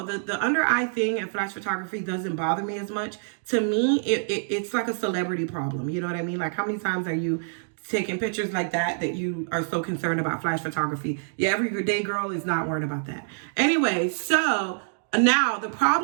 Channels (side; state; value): left; silent; digital silence